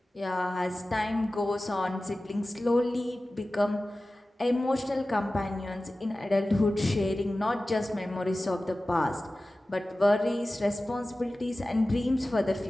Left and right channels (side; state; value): both; normal; correlation 0.96